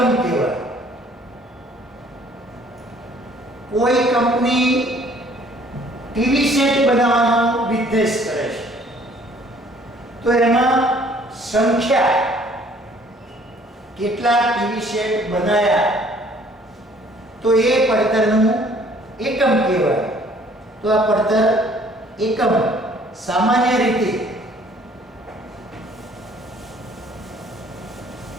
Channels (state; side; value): normal; both; correlation 0.58